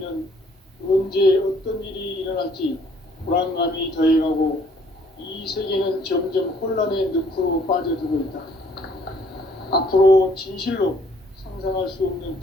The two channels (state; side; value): normal; both; correlation 0.62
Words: 언제 어떤 일이 일어날지 불안감이 더해가고 이 세계는 점점 혼란의 늪으로 빠져들고 있다. 앞으로 진실로 상상할 수 없는